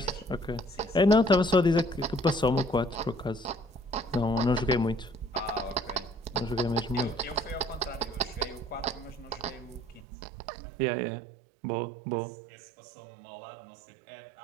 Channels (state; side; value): drops out; left; at 10.0 s